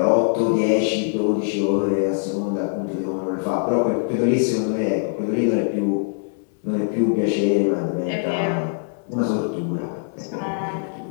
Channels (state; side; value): silent; right; digital silence